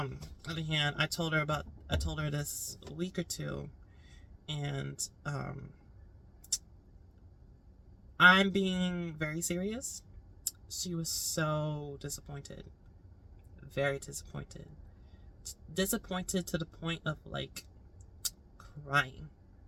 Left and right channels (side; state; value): both; identical; correlation 1.00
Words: on the other hand, I told her this a week or two, and I'm being very serious. She was so disappointed, very disappointed, disappointed to the point of like crying